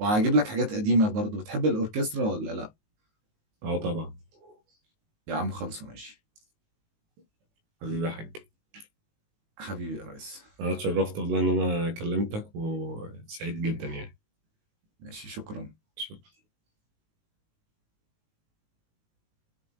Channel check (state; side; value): late; left; 19 ms